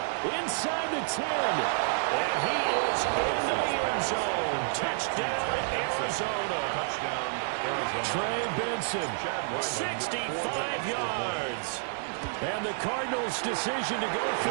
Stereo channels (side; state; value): left; silent; digital silence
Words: Inside the 10. And he is into the end zone. Touchdown, Arizona. Touchdown, Arizona. Trey Benson, 65 yards. And the Cardinals' decision to go for